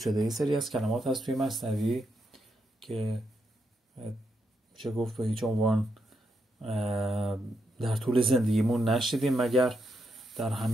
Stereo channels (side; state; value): both; normal; correlation 0.81